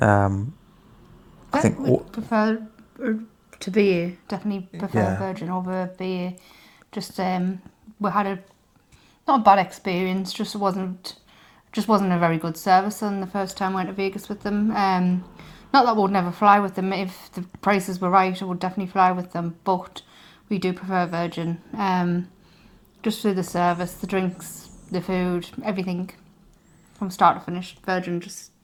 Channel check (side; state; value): both; identical; correlation 1.00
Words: think would prefer to BA, definitely prefer Virgin over BA. Just we had not a bad experience, just wasn't a very good service on the first time I went to Vegas with them. Not that we would never fly with them. If the prices were right, I would definitely fly with them, but we do prefer Virgin. Just through the service, the drinks, the food, everything from start to finish, Virgin just